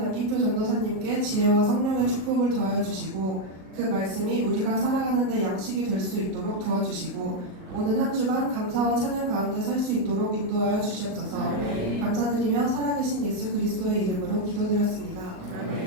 전도사님께 지혜와 성령의 축복을 더하여 주시고 그 말씀이 우리가 살아가는 데 양식이 될 수 있도록 도와주시고 오는 한 주간 감사와 찬양 가운데 살 수 있도록 인도하여 주시옵소서. 감사드리며 살아계신 예수 그리스도의 이름으로 기도드렸습니다.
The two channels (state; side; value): late; left; 38 ms